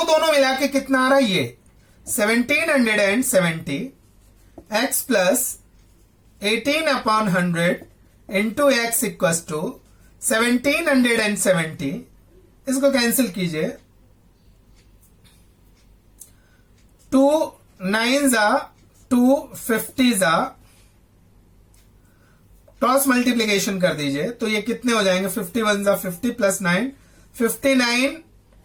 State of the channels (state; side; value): identical; both; correlation 1.00